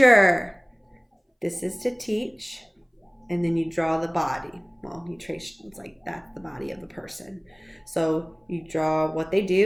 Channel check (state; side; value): identical; both; correlation 1.00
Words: This is to teach. And then you draw the body. Well, you trace, it's like that's the body of the person. So you draw what they